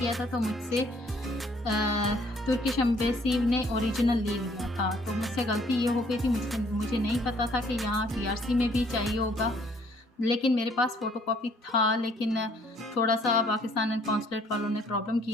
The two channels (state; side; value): normal; both; correlation 0.62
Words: था तो मुझसे तुर्किश एम्बेसी ने ओरिजिनल ले लिया था, तो मुझसे गलती ये हो गई थी, मुझे नहीं पता था कि यहाँ टीआरसी में भी चाहिए होगा। लेकिन मेरे पास फ़ोटोकॉपी था, लेकिन थोड़ा-सा पाकिस्तान कॉन्सुलेट वालों ने प्रॉब्लम